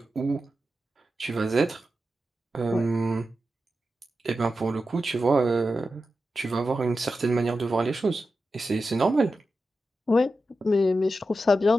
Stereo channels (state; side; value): normal; both; correlation 0.91